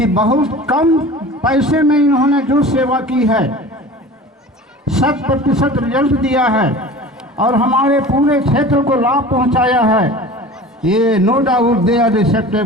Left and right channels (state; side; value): normal; both; correlation 0.38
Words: बहुत कम पैसे में इन्होंने जो सेवा की है 100% रिजल्ट दिया है और हमारे पूरे क्षेत्र को लाभ पहुंचाया है। ये no doubt they are